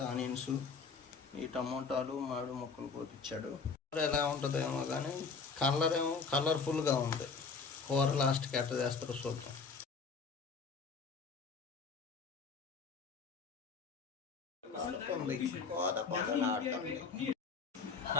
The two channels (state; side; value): quieter; right; 5.0 dB